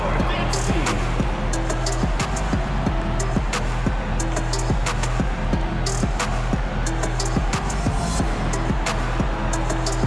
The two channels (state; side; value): identical; both; correlation 1.00